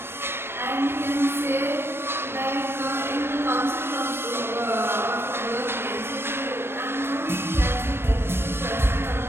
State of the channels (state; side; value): late; left; 0.12 ms